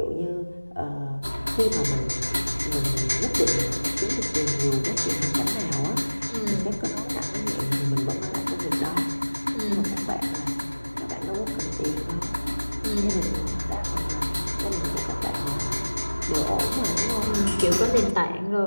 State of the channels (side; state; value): both; inverted; correlation -1.00